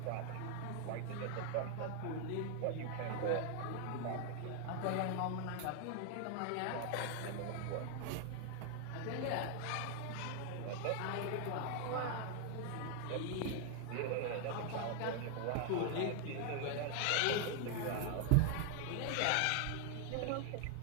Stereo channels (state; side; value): different; both; correlation 0.00